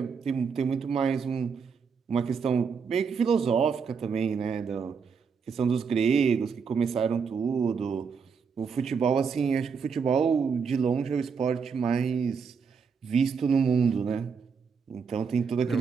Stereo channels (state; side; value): quieter; left; 5.9 dB